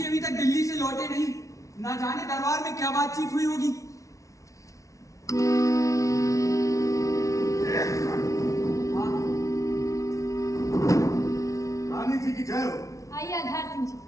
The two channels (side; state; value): right; late; 0.16 ms